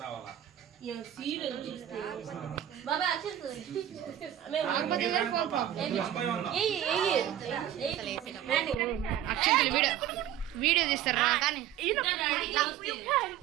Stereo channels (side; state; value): left; quieter; 11.3 dB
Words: రావాలా అక్షంతలు వీడియో తీస్తారా కానీ